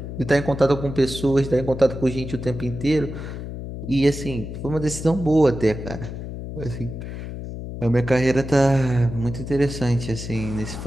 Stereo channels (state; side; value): noise; left; hum, 8 dB below the sound